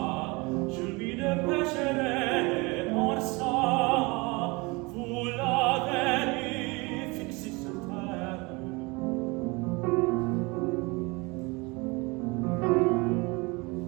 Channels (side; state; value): left; quieter; 26.1 dB